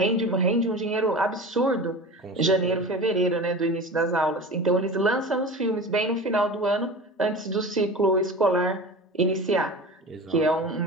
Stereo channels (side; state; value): both; normal; correlation 0.33